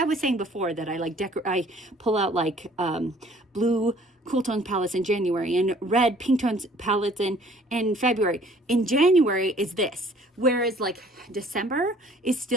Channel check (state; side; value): normal; both; correlation 0.55